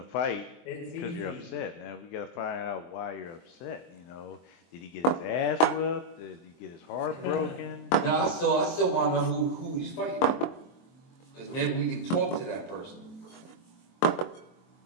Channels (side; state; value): right; late; 23 ms